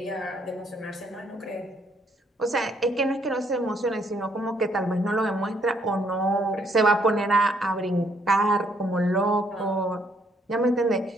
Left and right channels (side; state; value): both; normal; correlation 0.69